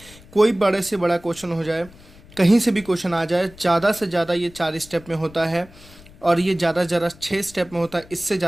कोई बड़े से बड़ा क्वेश्चन हो जाए, कहीं से भी क्वेश्चन आ जाए, ज़्यादा से ज़्यादा ये 4 स्टेप में होता है। और ये ज़्यादा 6 स्टेप में होता है। इससे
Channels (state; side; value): noise; left; rumble, 22 dB below the sound